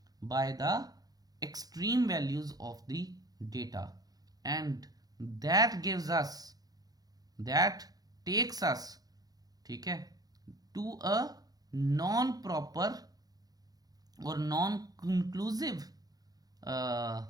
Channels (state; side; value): late; left; 0.18 ms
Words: by the extreme values of the data, and that gives us, that takes us, ठीक है, टू अ नॉन प्रॉपर और नॉन कंक्लूसिव